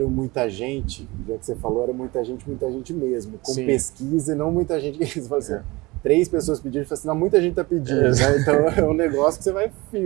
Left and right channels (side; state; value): left; quieter; 22.7 dB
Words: muita gente, já que você falou, era muita gente mesmo, com pesquisa e não muita gente que falou assim, 3 pessoas pediram, assim, não, muita gente está pedindo, né? Então é um negócio que você vai